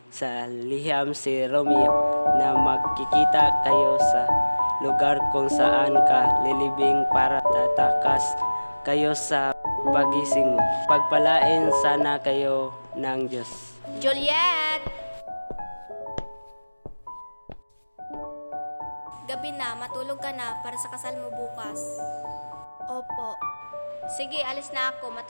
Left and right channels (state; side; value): inverted; both; correlation -1.00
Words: sa liham si Romeo na magkikita kayo sa lugar kung saan ka lilibing para tatakas kayo sa pagising mo. Pagpalain sana kayo ng Diyos. Juliet! Gabi na, matulog ka na para sa kasal mo bukas. Opo. Sige, alis na ako.